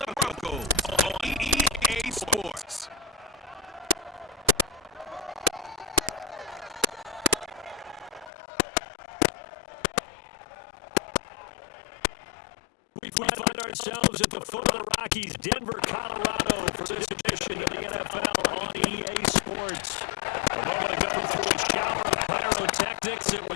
Broncos on EA Sports. We find ourselves at the foot of the Rockies, Denver, Colorado, for this edition of the NFL on EA Sports. A moment ago, through a shower of pyrotechnics, it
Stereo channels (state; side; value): drops out; right; at 8.3 s